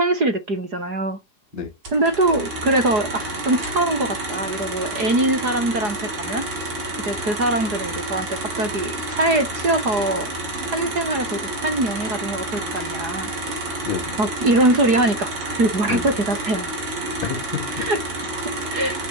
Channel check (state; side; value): late; left; 4.8 ms